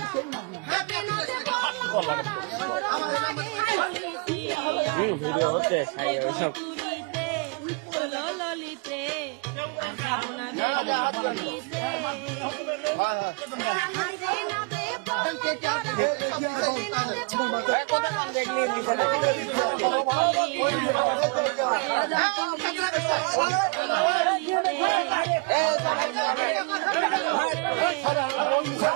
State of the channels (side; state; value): left; quieter; 33.3 dB